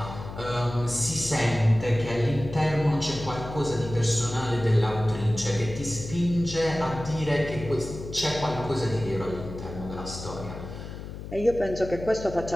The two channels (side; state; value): left; noise; hum, 10 dB below the sound